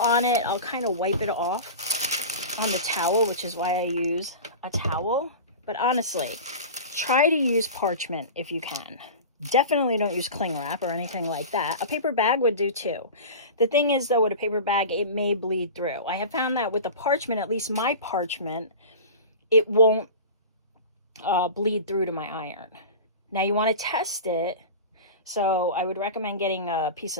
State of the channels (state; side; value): inverted; both; correlation -0.32